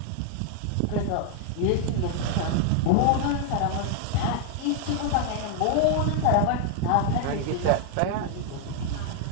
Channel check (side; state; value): both; different; correlation 0.00